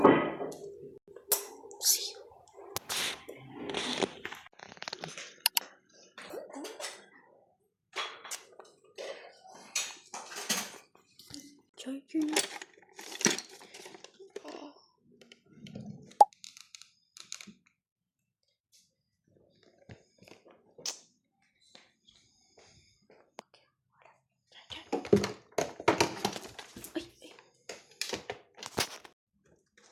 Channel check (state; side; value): identical; both; correlation 1.00